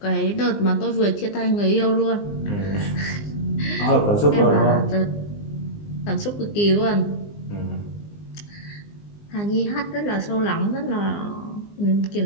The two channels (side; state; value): right; late; 20 ms